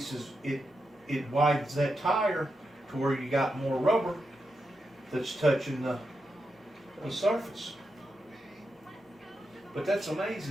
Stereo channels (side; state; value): both; normal; correlation 0.86